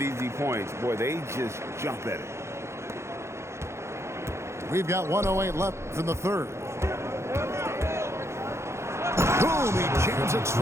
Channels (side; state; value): left; late; 0.13 ms